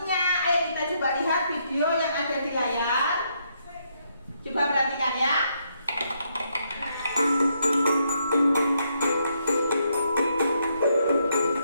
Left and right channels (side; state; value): both; inverted; correlation -0.76